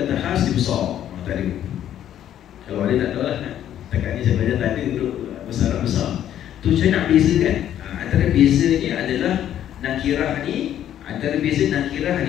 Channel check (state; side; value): quieter; right; 11.0 dB